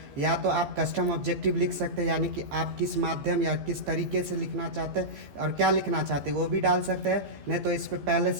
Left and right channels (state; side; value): late; left; 14 ms